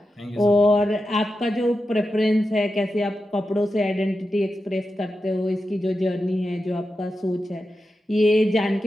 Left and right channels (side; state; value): both; normal; correlation 0.90